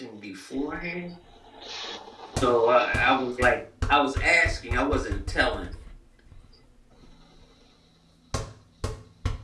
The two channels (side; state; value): both; identical; correlation 1.00